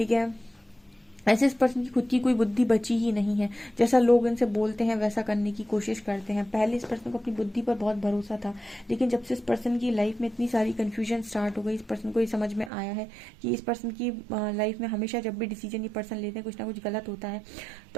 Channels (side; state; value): left; drops out; at 12.7 s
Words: है, ऐसे इस पर्सन की खुद की कोई बुद्धि बची ही नहीं है। जैसा लोग इनसे बोलते हैं वैसा करने की कोशिश करते हैं। पहले इस पर्सन को अपनी बुद्धि पर बहुत भरोसा था, लेकिन जब से इस पर्सन की लाइफ में इतनी सारी कन्फ्यूजन स्टार्ट हो गई, इस पर्सन को ये समझ में आया है कि इस पर्सन की लाइफ में हमेशा जब भी डिसीजन ये पर्सन लेते हैं कुछ ना कुछ गलत होता है।